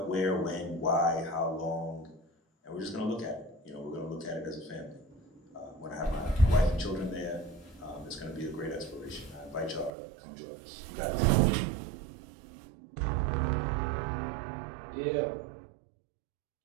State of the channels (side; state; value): left; drops out; at 9.9 s